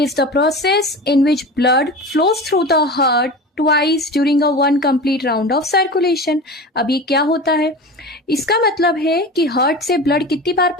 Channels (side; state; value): both; normal; correlation 0.31